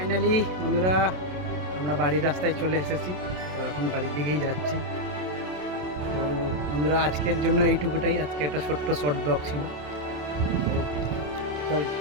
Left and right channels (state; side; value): late; left; 27 ms